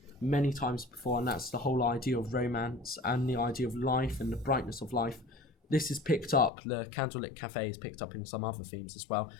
many times before, and that's the whole idea of romance and the idea of life and the brightness of life. This is picked up, the candlelit cafe is picked up in some other themes as well,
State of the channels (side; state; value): right; drops out; at 6.5 s